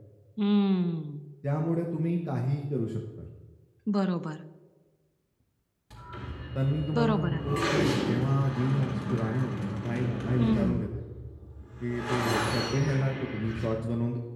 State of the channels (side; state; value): both; identical; correlation 1.00